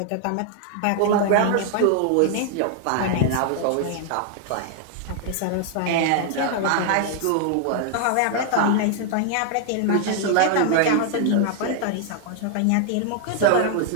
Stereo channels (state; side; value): different; both; correlation 0.00